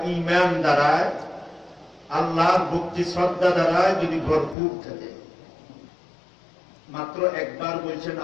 ঈমান দ্বারায় আল্লাহর ভক্তি শ্রদ্ধা দ্বারায় যদি ভরপুর থাকে। মাত্র একবার বলছেন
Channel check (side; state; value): right; drops out; at 4.5 s